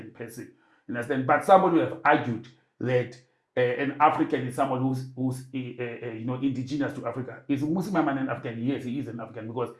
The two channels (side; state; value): both; identical; correlation 1.00